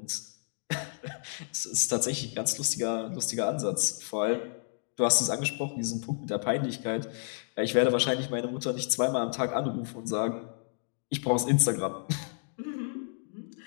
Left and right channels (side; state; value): right; silent; digital silence